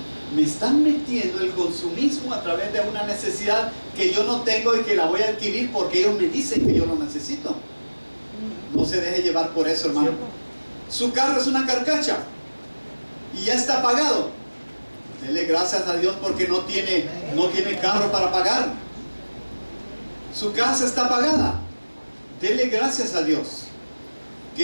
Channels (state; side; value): inverted; both; correlation -1.00